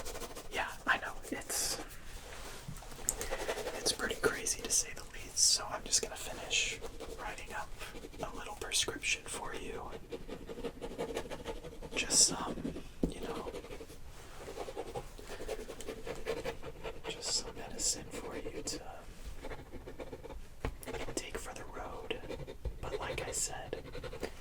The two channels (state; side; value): identical; both; correlation 1.00